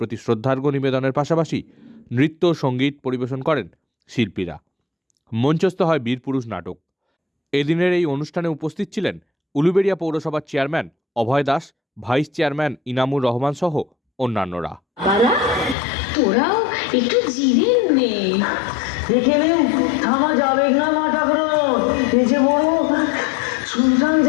শ্রদ্ধার্ঘ্য নিবেদনের পাশাপাশি নৃত্য সঙ্গীত পরিবেশন করেন শিল্পীরা। মঞ্চস্থ হয় বীরপুরুষ নাটক। এদিনের এই অনুষ্ঠানে উপস্থিত ছিলেন উলুবেড়িয়া পৌরসভার চেয়ারম্যান অভয় দাস, ভাইস চেয়ারম্যান ইনামুর রহমান সহ অন্যান্যরা। তোরাও একটু জিরে নে। এখানে থামা যাবে না মা ঠাকুর, এই যে বড় শুনশান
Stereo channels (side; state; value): right; drops out; at 15.8 s